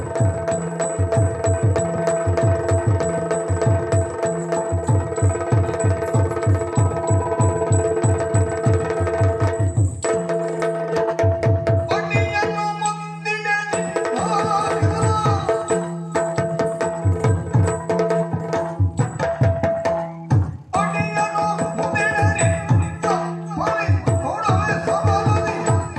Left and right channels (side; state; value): both; identical; correlation 1.00